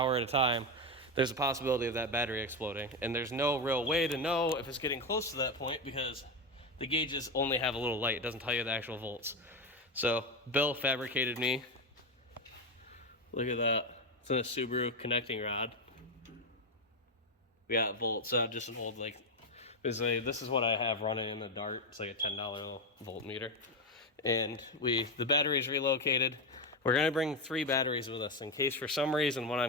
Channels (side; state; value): both; normal; correlation 0.12